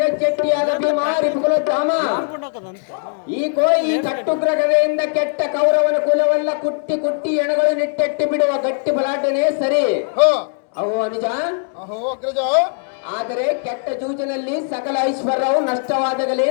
ಭೀಮ ರಿಪುಕುಲೋತ್ತಮ. ಈ ಕಟ್ಟುಗ್ರ ಗದೆಯಿಂದ ಕೆಟ್ಟ ಕೌರವನ ಕುಲವೆಲ್ಲ ಕುಟ್ಟಿ ಕುಟ್ಟಿ ಎಣಗಳು ನಿಟ್ಟೆಟ್ಟಿ ಬಿಡುವ ಗಟ್ಟಿ ಬಲಾಟನೆ ಸರಿ. ಅಹೋ ಅನುಜ. ಅಹೋ ಅಗ್ರಜ. ಆದರೆ ಕೆಟ್ಟ ಜೂಜಿನಲ್ಲಿ ಸಕಲ ಐಶ್ವರ್ಯವು ನಷ್ಟವಾದಾಗಲೇ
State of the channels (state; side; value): silent; right; 60 dB below the other